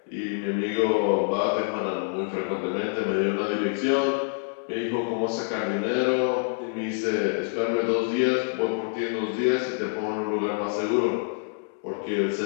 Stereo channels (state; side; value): silent; right; digital silence